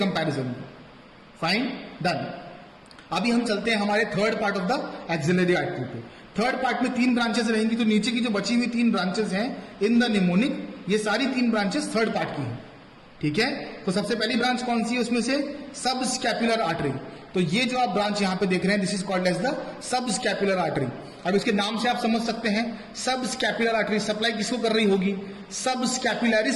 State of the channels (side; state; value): both; identical; correlation 1.00